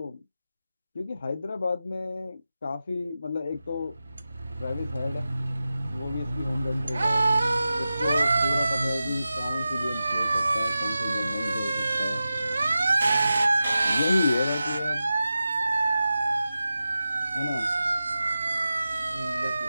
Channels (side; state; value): both; inverted; correlation -0.93